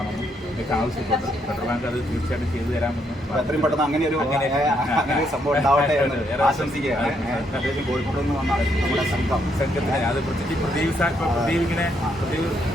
എനിക്ക് ആവശ്യപ്പെട്ടു. ഫെഡറൽ ബാങ്ക് അത് തീർച്ചയായിട്ടും ചെയ്തു തരാമെന്നും എത്രയും പെട്ടെന്ന് അങ്ങനെ ഒരു സംഭവം ഉണ്ടാവട്ടെ എന്ന് ആശംസിക്കുകയാണ്. കോഴിക്കോട് നിന്ന് വന്ന നമ്മുടെ സംഘത്തിന് അത് പ്രദീപ് ഇങ്ങനെ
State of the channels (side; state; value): both; normal; correlation 0.75